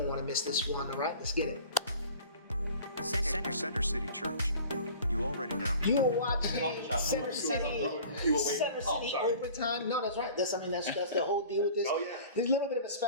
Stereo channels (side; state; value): both; inverted; correlation -0.44